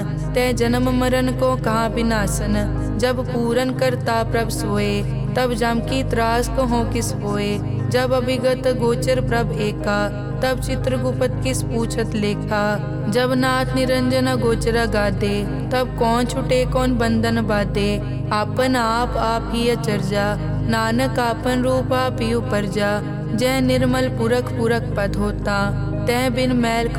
तै जन्म मरण को कहाँ विनाशन। जब पूरन करता प्रभ सोए, तब जम की त्रास कहो किस होए। जब अभिगत गोचर प्रभ एका, तब चित्रगुप्त किस पूछत लेखा। जब नाथ निरंजन गोचर गादे, तब कौन छुटे कौन बंधन बाधे। आपन आप ही अचरजा, नानक आपन रूप आप ही उपरजा। जय निर्मल पुरख पुरख पद होता, तय बिन मैल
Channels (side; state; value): both; identical; correlation 1.00